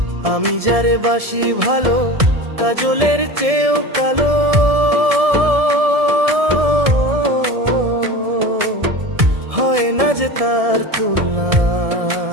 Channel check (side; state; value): left; late; 1.7 ms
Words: আমি যারে বাসি ভালো, কাজলের চেয়েও কালো, হয় না যে তার তুলনা।